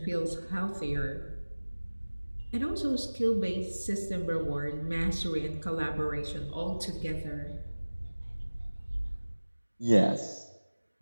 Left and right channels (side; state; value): both; inverted; correlation -1.00